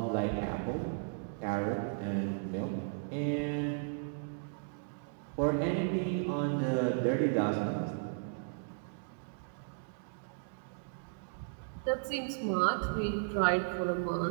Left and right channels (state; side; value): silent; left; digital silence